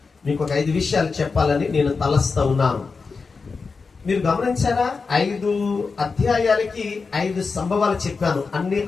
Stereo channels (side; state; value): right; quieter; 4.7 dB